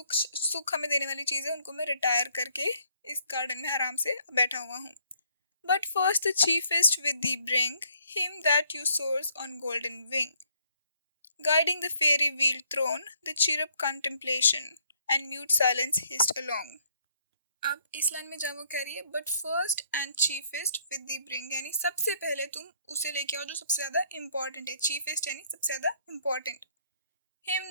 सुख हमें देने वाली चीज़ है, उनको मैं रिटायर करके इस गार्डन में आराम से बैठा हुआ हूँ. But first the chiefest with thee bring him that you soars on golden wing, guiding the fairy wheel throne, the cherub contemplation, and mute silence hissed along. अब इस लाइन में जब वो कह रही है but first and chiefest with the bring, यानी सबसे पहले तुम उसे लेके आओ जो सबसे ज्यादा इम्पोर्टेंट है. चीफेस्ट यानी सबसे ज्यादा important. Him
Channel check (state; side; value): inverted; both; correlation -0.67